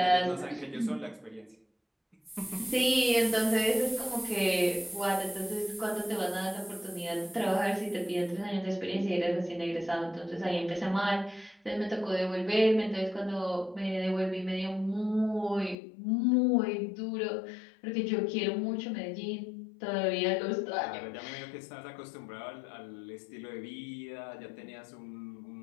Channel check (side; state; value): right; drops out; at 15.8 s